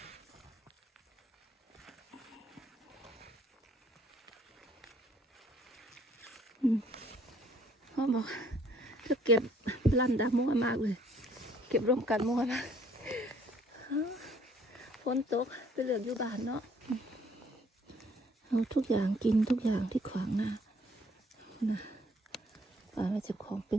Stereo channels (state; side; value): normal; both; correlation 0.62